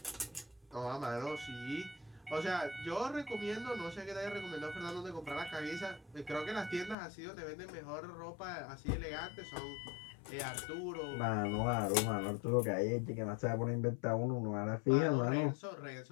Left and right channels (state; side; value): drops out; right; at 7.0 s